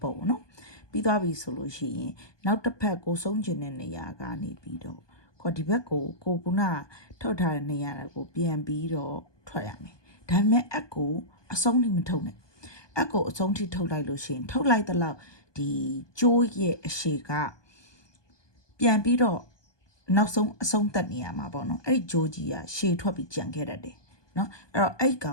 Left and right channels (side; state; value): right; late; 1.2 ms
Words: ပေါ်ပေါ့နော်ပြီးသွားပြီဆိုလို့ရှိရင်နောက်တစ်ဖက်ကိုဆုံးချင်တဲ့နေရာကနေပြီးတော့ခေါ်ဒီဘက်ကိုကုနာထုတ်ထားတဲ့နေရာကိုပြန်ပြီးတော့ထွက်ရမယ်ဒါပေမဲ့အကိုအဆုံးထိမထုတ်နဲ့အကိုအဆုံးထိထုတ်လိုက်လို့ရှိရင်ထုတ်လိုက်တဲ့လောက်ဒီကျိုးရဲ့အရှိကပြန်ပြီးတော့နောက်ဆုံးအဆုံးသက်နေရမှာပေါ့နော်အဲ့ဒီဂျိုးကြီးကရှည်ထွက်ပြီးကြံခဲ့တတ်တယ်နော်အဲ့တော့အဲ့ကော